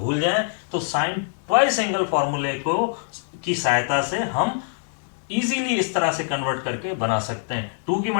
जाएं तो साइन ट्वाइस एंगल फॉर्मूले को की सहायता से हम इजीली इस तरह से कन्वर्ट करके बना सकते हैं। 2 की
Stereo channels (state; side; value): silent; right; digital silence